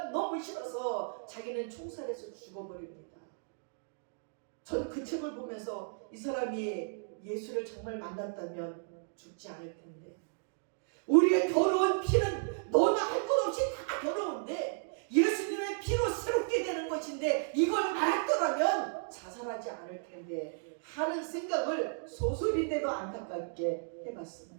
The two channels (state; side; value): silent; left; digital silence